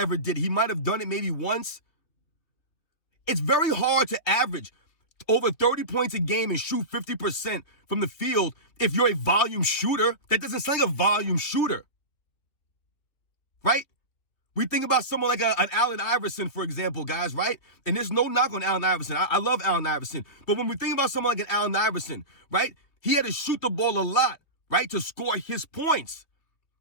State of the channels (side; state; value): right; late; 3.1 ms